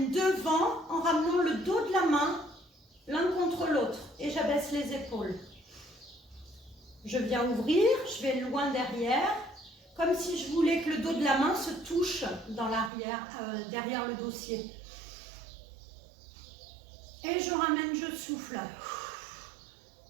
devant en ramenant le dos de la main l'un contre l'autre et j'abaisse les épaules. Je viens ouvrir, je vais loin derrière, comme si je voulais que le dos de la main se touche dans l'arrière, derrière le dossier. Et je ramène, je souffle.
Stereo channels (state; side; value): drops out; left; at 12.9 s